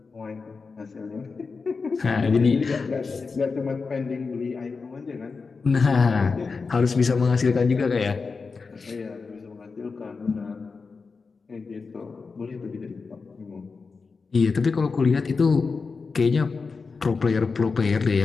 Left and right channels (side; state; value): right; quieter; 4.6 dB